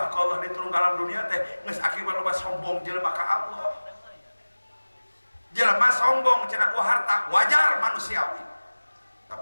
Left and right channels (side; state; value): both; inverted; correlation -1.00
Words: ka Allah diturun ka alam dunia teh geus akibat loba sombong jelema ka Allah. Jelema sombong cenah ku harta wajar manusiawi.